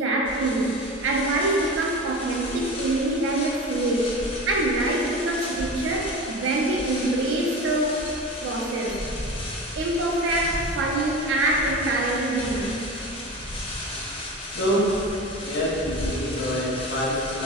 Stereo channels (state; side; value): normal; both; correlation 0.30